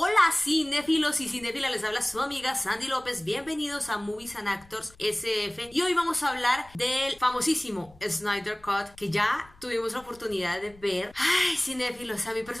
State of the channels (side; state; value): left; noise; rumble, 26 dB below the sound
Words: cinéfilos y cinéfilas, les habla su amiga Sandy López, bienvenidos a Movies and Actors SF y hoy vamos a hablar del famosísimo Snyder Cut que ya tuvimos la oportunidad de ver. Ay, cinéfilos, a mí